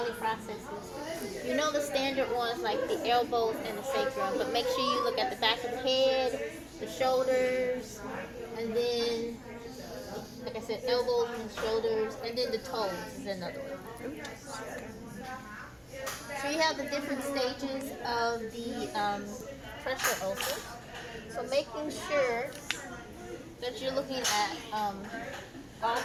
processes. You know the standard ones like the elbows and the sacrum, but make sure you look at the back of the head, the shoulders, and then like I said, elbows and shoulders, and then the toes is another one. So you have the different stages of the pressure ulcers. So making sure that you're looking at all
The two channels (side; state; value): both; identical; correlation 1.00